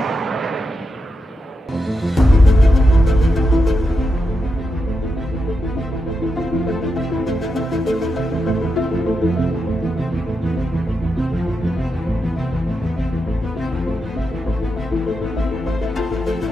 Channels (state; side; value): normal; both; correlation 0.86